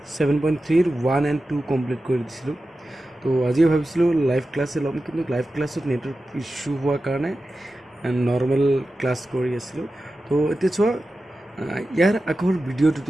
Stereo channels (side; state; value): both; normal; correlation 0.93